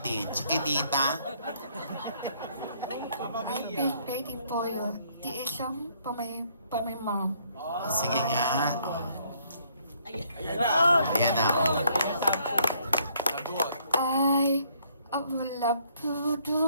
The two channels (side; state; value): both; inverted; correlation -0.66